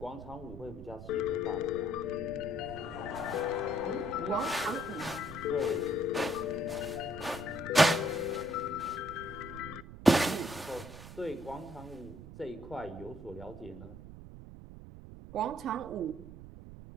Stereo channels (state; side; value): noise; right; rumble, 14 dB below the sound